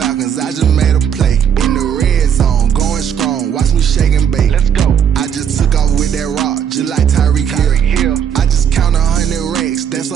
I just made a play. In the red zone, going strong, watch me shake and bake. Let's go. I just took off with that rock, just like Tyreek Hill. I just count 100 racks, that's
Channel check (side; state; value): left; quieter; 8.4 dB